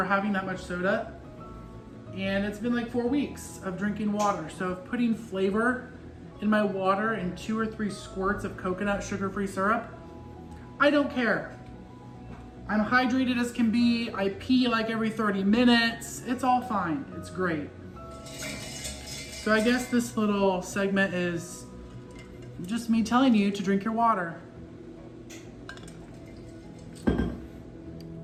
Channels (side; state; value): both; identical; correlation 1.00